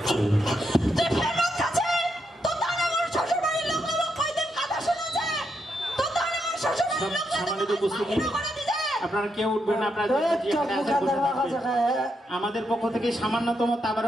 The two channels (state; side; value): normal; both; correlation 0.81